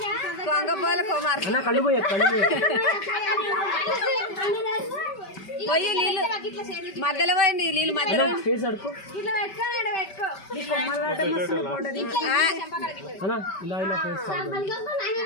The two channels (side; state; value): right; late; 5.2 ms